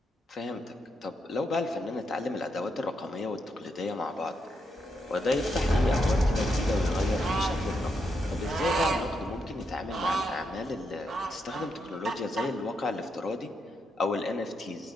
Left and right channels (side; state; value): both; normal; correlation 0.81